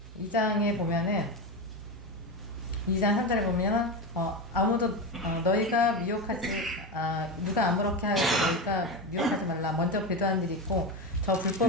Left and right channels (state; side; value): normal; both; correlation 0.18